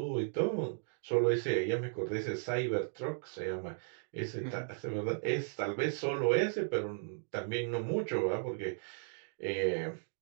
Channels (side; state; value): left; silent; digital silence